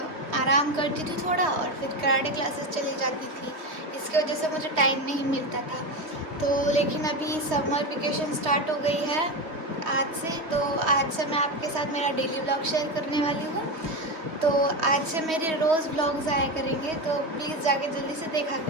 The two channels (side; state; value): left; late; 3.3 ms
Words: आराम करती थी थोड़ा और फिर कराटे क्लासेस चली जाती थी। इसकी वजह से मुझे टाइम नहीं मिलता था। तो लेकिन अभी समर वेकेशन स्टार्ट हो गई है आज से, तो आज से मैं आपके साथ मेरा डेली व्लॉग शेयर करने वाली हूँ। तो आज से मेरे रोज़ व्लॉग्स आया करेंगे, तो प्लीज़ जाके जल्दी से देखा